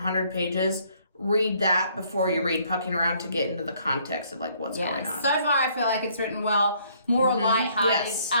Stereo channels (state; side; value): inverted; both; correlation -0.65